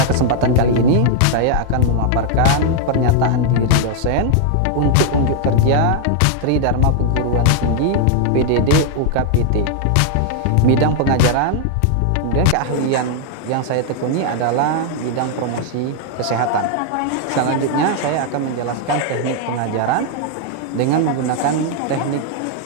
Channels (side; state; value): both; different; correlation 0.00